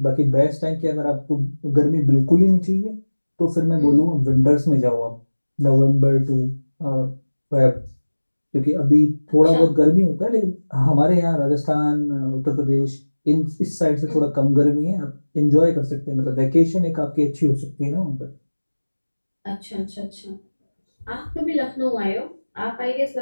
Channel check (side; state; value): both; inverted; correlation -1.00